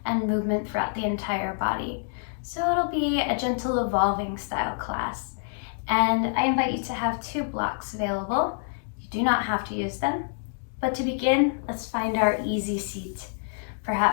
and movement throughout the entire body. So it'll be a gentle evolving style class. And I invite you to have 2 blocks available. You do not have to use them. But to begin, let's find our easy seat.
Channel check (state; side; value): silent; right; digital silence